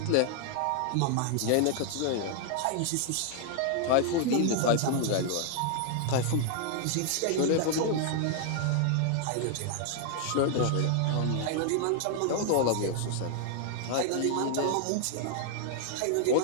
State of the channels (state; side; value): different; both; correlation 0.00